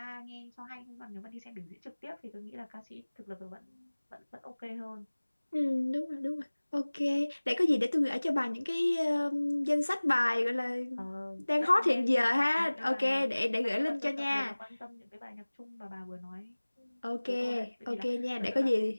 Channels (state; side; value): inverted; both; correlation -1.00